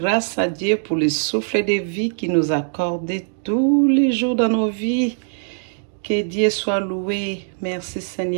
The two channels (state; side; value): silent; left; digital silence